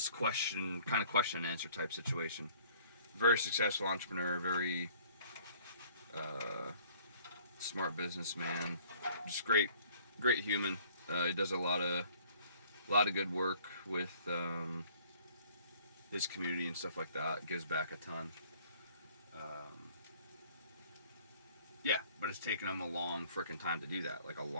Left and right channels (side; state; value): both; inverted; correlation -0.56